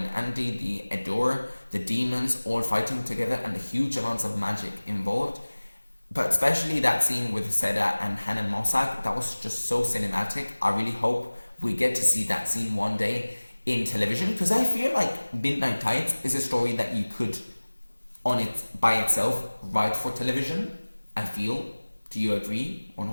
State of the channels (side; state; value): both; inverted; correlation -1.00